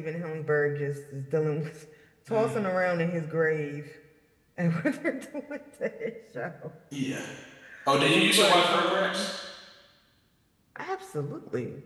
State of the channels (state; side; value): identical; both; correlation 1.00